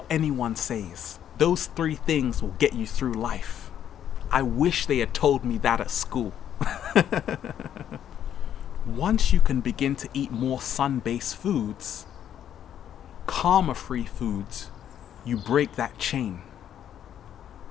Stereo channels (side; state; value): right; quieter; 10.0 dB